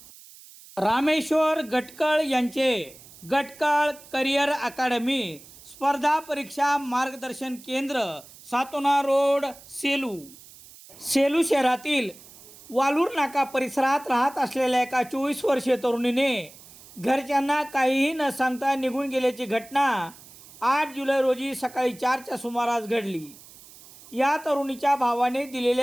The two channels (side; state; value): right; noise; hiss, 21 dB below the sound